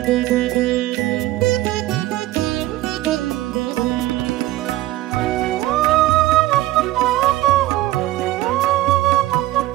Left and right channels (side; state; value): left; quieter; 16.4 dB